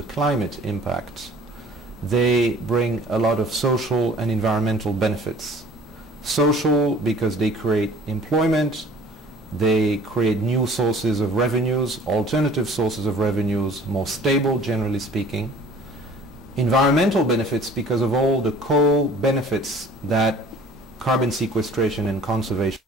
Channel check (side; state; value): both; normal; correlation 0.50